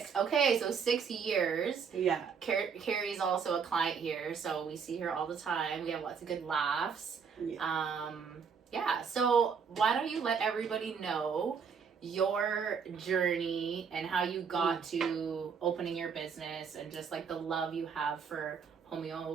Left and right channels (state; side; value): quieter; left; 6.3 dB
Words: Okay, so 6 years. Yeah. Kerry's also a client here, so we see her all the time. We have lots of good laughs. Yeah. So why don't you let everybody know your journey and how you got to opening your business and just like the love you have for